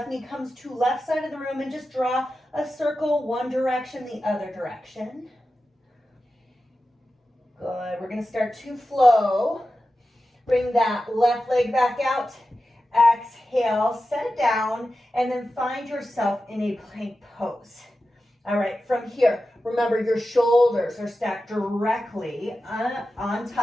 knee comes to left side of the room and just draw a circle one direction, the other direction. Good. We're going to start to flow. Bring that left leg back out. Exhale, set it down, and then find yourself in a plank pose. All right, from here, remember your shoulders are stacked directly on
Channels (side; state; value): both; normal; correlation 0.93